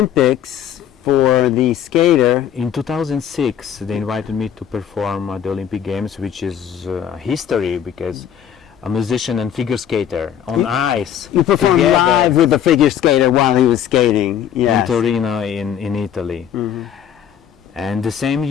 for the skater. In 2006, they invited me to perform at the Olympic Games, which is history because a musician and figure skater on ice. You performed live with the figure skater while he was skating. Yes. In Torino, in Italy. And the same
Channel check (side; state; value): right; quieter; 9.5 dB